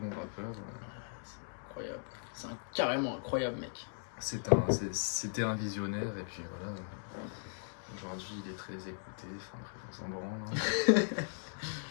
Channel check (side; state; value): right; silent; digital silence